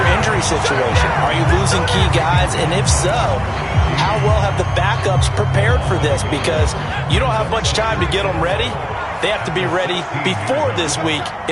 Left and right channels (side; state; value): both; identical; correlation 1.00